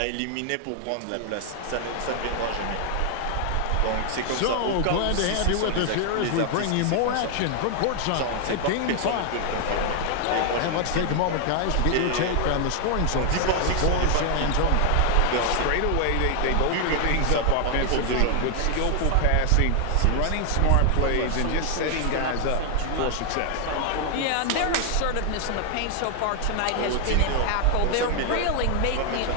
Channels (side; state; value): both; different; correlation 0.00